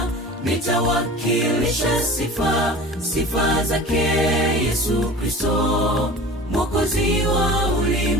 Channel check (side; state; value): both; normal; correlation 0.39